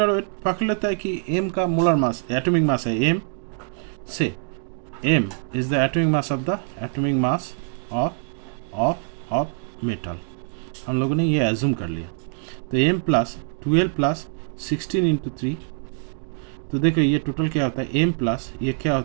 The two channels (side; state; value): left; silent; 57 dB below the other